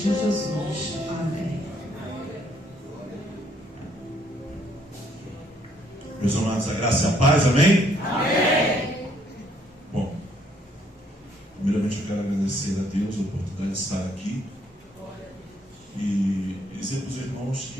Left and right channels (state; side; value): normal; both; correlation 0.67